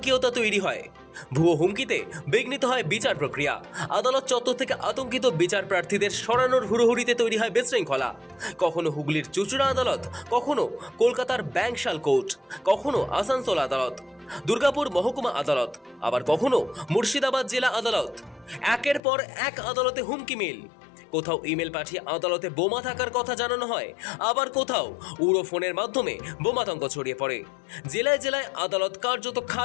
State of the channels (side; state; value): right; drops out; at 19.0 s